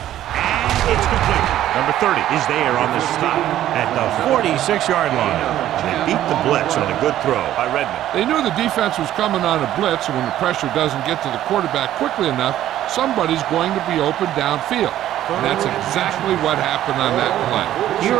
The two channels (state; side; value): quieter; left; 12.6 dB